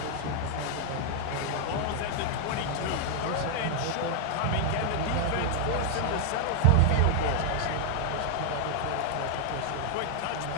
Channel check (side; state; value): both; different; correlation 0.00